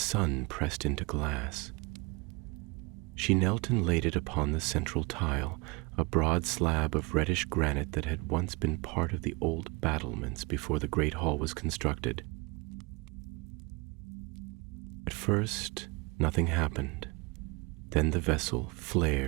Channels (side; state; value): left; quieter; 27.3 dB